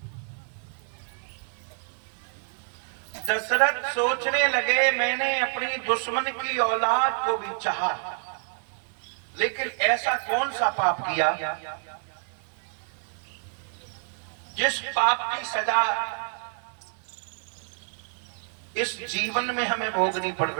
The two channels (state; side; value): silent; left; 55 dB below the other